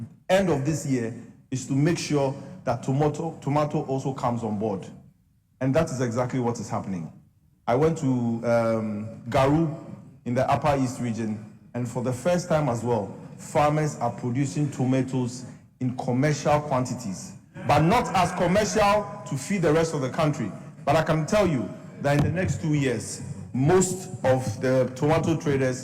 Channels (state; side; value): identical; both; correlation 1.00